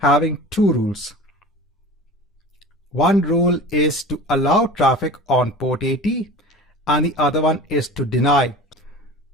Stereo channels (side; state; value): both; normal; correlation 0.37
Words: having two rules. One rule is to allow traffic on port 80, and the other one is to deny.